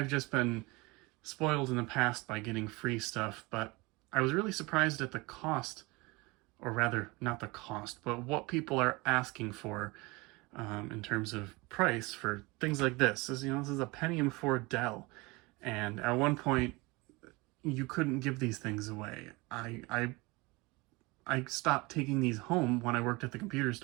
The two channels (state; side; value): quieter; left; 24.4 dB